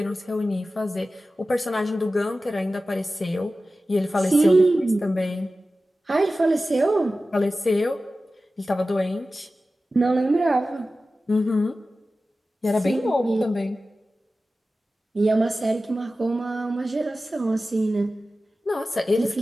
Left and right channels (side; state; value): both; normal; correlation 0.95